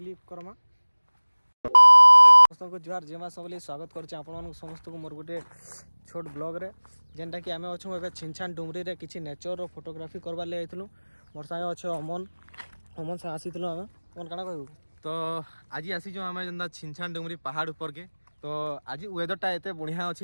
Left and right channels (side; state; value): both; inverted; correlation -1.00